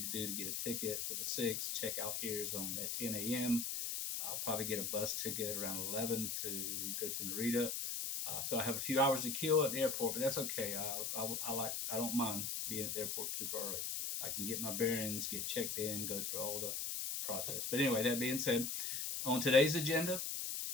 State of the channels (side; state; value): left; noise; hiss, 2 dB below the sound